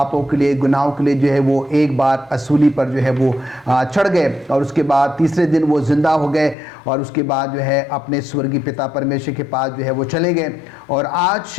के लिए, गुनाहों के लिए जो है वो एक बार असूली पर जो है वो चढ़ गए और उसके बाद तीसरे दिन वो जिंदा हो गए और उसके बाद जो है अपने स्वर्गीय पिता परमेश्वर के पास जो है वो चले गए और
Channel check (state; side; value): drops out; right; at 6.6 s